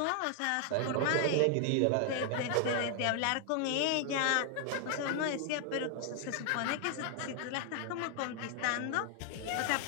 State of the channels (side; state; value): both; different; correlation 0.00